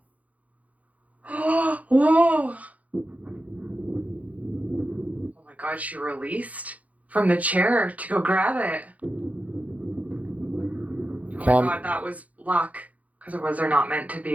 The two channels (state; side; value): late; left; 0.071 ms